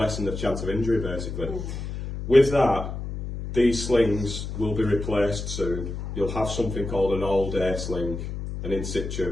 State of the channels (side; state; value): left; noise; hum, 6 dB below the sound